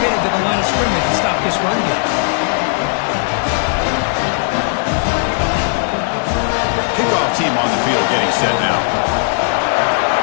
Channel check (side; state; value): right; silent; 69 dB below the other